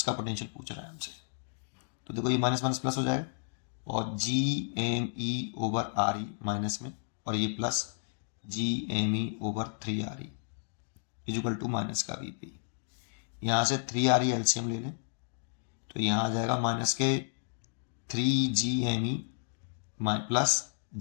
पोटेंशियल पूछ रहा है हमसे। तो देखो ये माइनस माइनस प्लस हो जाएगा, और G M E over R E minus में, और ये plus G M E over 3 R E equal to minus का वी पी। यहाँ से 3 आर ई एलसीएम ले लें तो यहाँ आ जाएगा माइनस के 3 G M E plus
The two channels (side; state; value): right; silent; digital silence